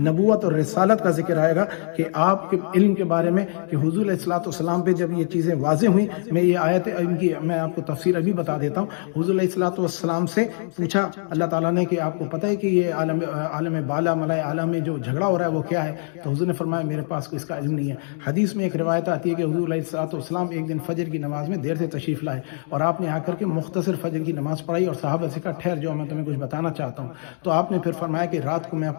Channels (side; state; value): right; silent; 63 dB below the other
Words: اور رسالت کا ذکر آئے گا کہ آپ کے علم کے بارے میں کہ حضور علیہ السلام پہ جب یہ چیزیں واضح ہوئیں، میں یہ آیت ان کی میں آپ کو تفسیر ابھی بتا دیتا ہوں۔ حضور علیہ السلام سے پوچھا اللہ تعالیٰ نے کہ آپ کو پتہ ہے کہ یہ عالم بالا ملائے اعلیٰ میں جو جھگڑا ہو رہا ہے وہ کیا ہے؟ تو حضور نے فرمایا میرے پاس اس کا علم نہیں ہے۔ حدیث میں ایک روایت آتی ہے کہ حضور علیہ السلام ایک دن فجر کی نماز میں دیر سے تشریف لائے اور آپ نے آ کر کے مختصر فجر کی نماز پڑھائی، اور صحابہ سے کہا ٹھہر جاؤ میں تمہیں کچھ بتانا چاہتا ہوں۔ تو آپ نے پھر فرمایا کہ رات کو میں